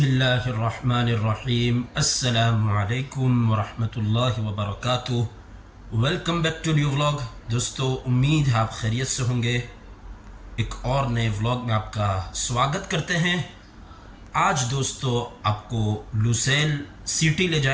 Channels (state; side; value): identical; both; correlation 1.00